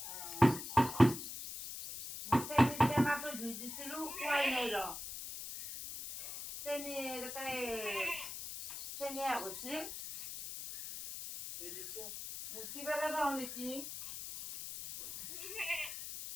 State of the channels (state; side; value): noise; left; hiss, 8 dB below the sound